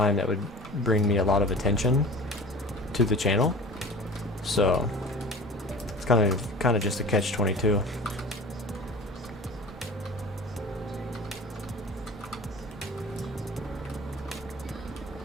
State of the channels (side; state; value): both; normal; correlation 0.39